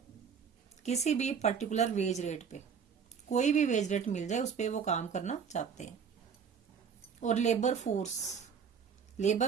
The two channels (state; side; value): quieter; left; 6.8 dB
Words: किसी भी पर्टिकुलर वेज रेट पे, कोई भी वेज रेट मिल जाए उस पर वो काम करना चाहते हैं। और लेबर फोर्स,